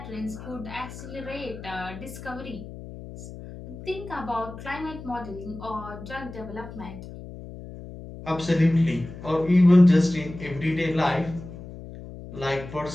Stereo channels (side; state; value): left; noise; hum, 13 dB below the sound